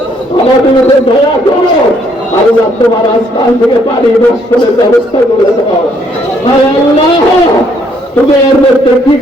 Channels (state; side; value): normal; both; correlation 0.68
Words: আমাদের উপর দয়া করো। আল্লাহ তোমার আসমান থেকে পানি বর্ষণের ব্যবস্থা করে দাও। হায় আল্লাহ, তুমি এর মধ্যে কি